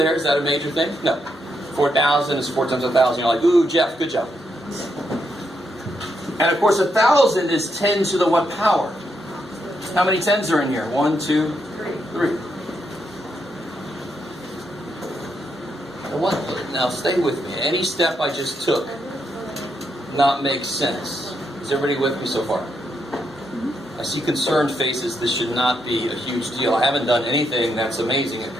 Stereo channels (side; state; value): both; normal; correlation 0.80